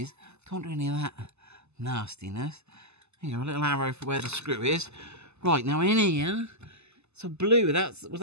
Don't do any of that nastiness. There you go, a little arrow for where the screw is. Right, now in here, so blue, was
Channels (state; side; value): late; left; 0.80 ms